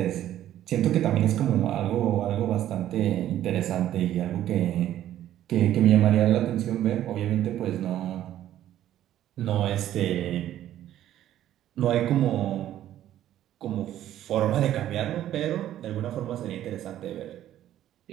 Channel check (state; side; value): quieter; left; 12.3 dB